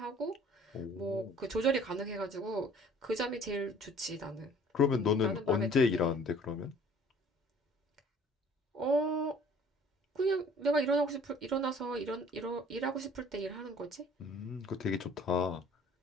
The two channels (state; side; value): normal; both; correlation 0.53